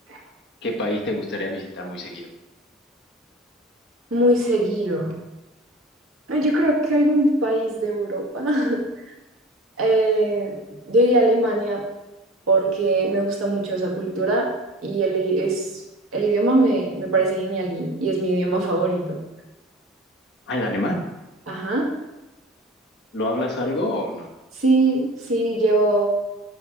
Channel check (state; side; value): normal; both; correlation 0.38